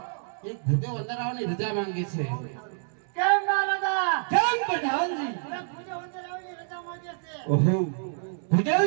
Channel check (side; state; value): left; silent; 60 dB below the other